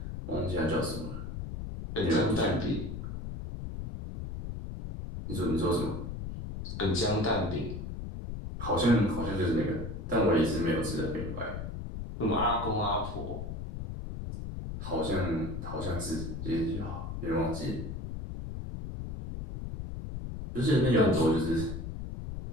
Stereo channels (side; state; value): left; noise; rumble, 7 dB below the sound